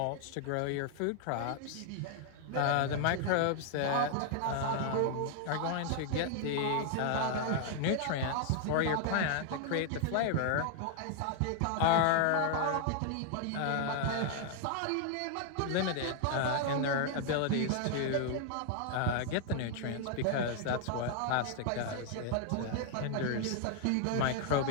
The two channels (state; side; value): different; both; correlation 0.00